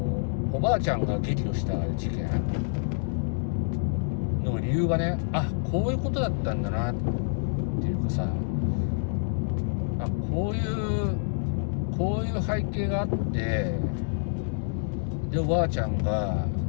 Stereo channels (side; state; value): right; silent; digital silence